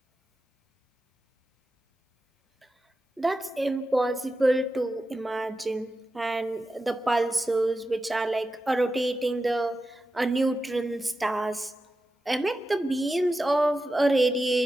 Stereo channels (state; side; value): normal; both; correlation 0.91